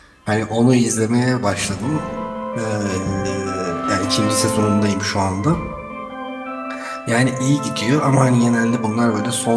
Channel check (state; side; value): identical; both; correlation 1.00